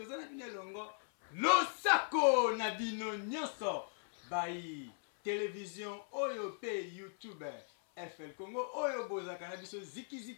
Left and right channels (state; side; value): silent; right; 52 dB below the other